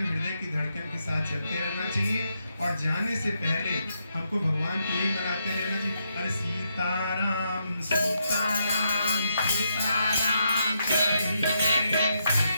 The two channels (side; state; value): both; inverted; correlation -0.80